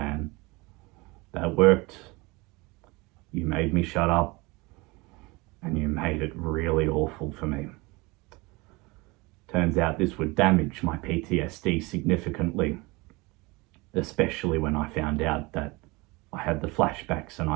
that worked. You made me shut up, and you made it really awful for me. Turns out this would damage my PTSD significantly, especially when I found out that I had the flashbacks and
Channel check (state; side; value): quieter; left; 24.6 dB